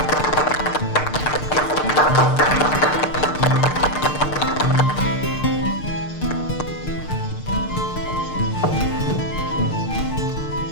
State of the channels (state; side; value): late; right; 6.6 ms